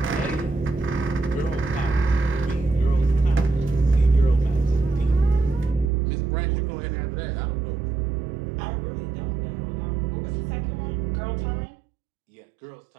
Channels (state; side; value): drops out; left; at 5.9 s